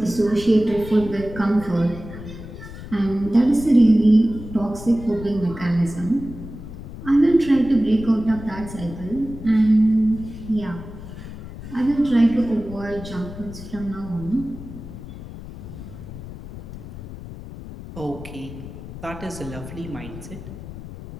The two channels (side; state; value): left; noise; rumble, 12 dB below the sound